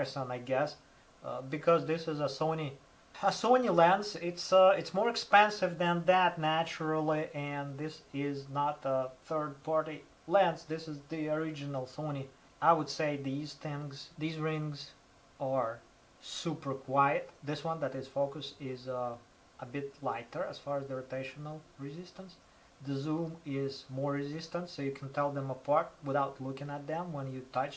I guess, because this is a Sony lens. It's more expensive than that naturally, and this is not a third-party lens. This is the original Sony. I would say these rings are super quiet. This one that is focused is a bit lighter as far as the rotational resistance. The zoom is more resistant, so you can tell them apart without looking at them when you touch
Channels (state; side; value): identical; both; correlation 1.00